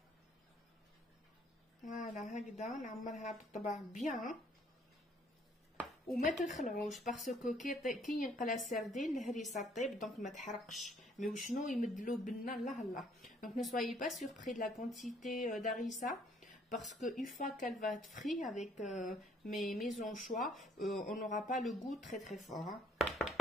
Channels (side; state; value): both; normal; correlation 0.63